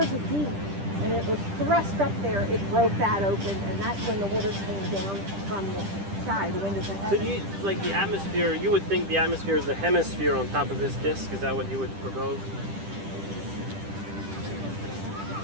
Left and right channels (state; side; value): late; left; 10 ms